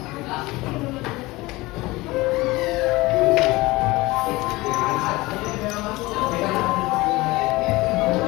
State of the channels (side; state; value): right; quieter; 20.8 dB